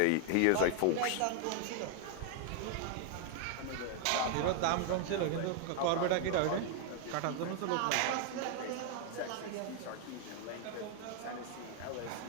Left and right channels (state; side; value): different; both; correlation 0.00